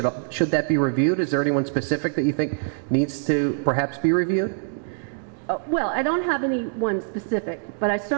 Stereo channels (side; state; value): left; silent; digital silence